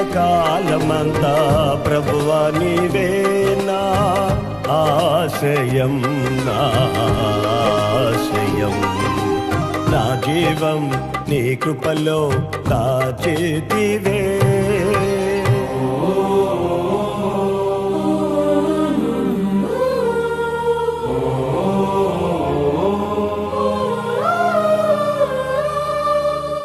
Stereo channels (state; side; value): identical; both; correlation 1.00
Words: కాలమంతా ప్రభువా నీవే నా ఆశయం, నా ఆశయం. నా జీవం నీ కృపలో దాచితివే.